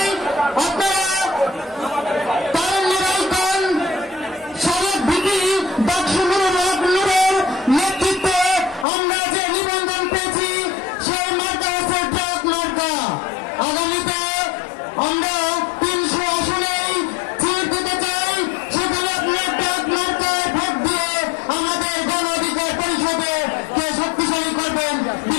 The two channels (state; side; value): drops out; right; at 8.8 s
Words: আপনারা তারুণ্যরাইকন সাবেক ভিপি ডাকসু নুরের নেতৃত্বে আমরা যে নিবন্ধন পেয়েছি সেই মার্কা হচ্ছে ট্রাক মার্কা। আগামীতে আমরা 300 আসনেই সিট দিতে চাই, সেখানে আপনার ট্রাক মার্কায় ভোট দিয়ে আমাদের গণ অধিকার পরিষদে কে শক্তিশালী করবেন,